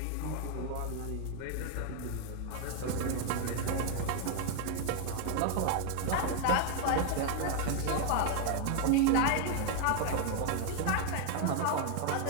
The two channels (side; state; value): both; different; correlation 0.00